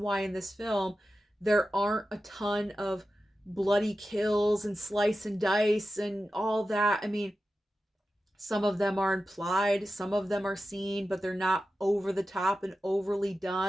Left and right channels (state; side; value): normal; both; correlation 0.93